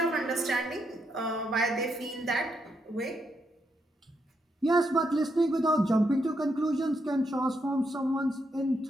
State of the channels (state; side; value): normal; both; correlation 0.79